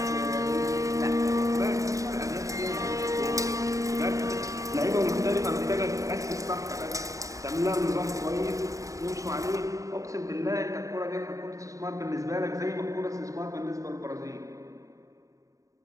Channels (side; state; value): left; late; 0.16 ms